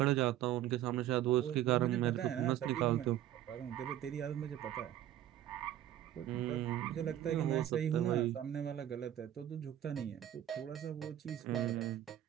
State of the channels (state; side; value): quieter; left; 12.2 dB